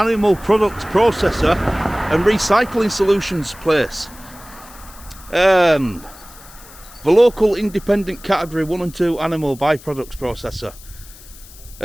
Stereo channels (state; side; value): noise; left; hiss, 20 dB below the sound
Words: products processor and recycling solutions place. The local independent category 1 and 2 animal byproducts processor.